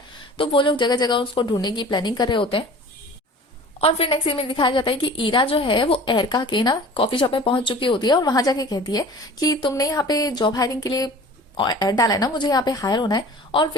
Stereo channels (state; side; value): normal; both; correlation 0.43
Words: तो वो लोग जगह जगह उसको ढूंढने की प्लानिंग कर रहे होते हैं। और फिर नेक्स्ट सीन में दिखाया जाता है कि ईरा जो है वो एरका के ना कॉफी शॉप में पहुंच चुकी होती है और वहां जाके कहती है कि तुमने यहाँ पे जॉब हायरिंग के लिए ऐड डाला है ना, मुझे यहाँ पे हायर होना है। और